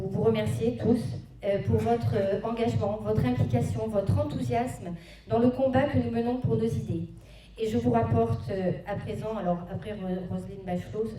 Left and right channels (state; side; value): identical; both; correlation 1.00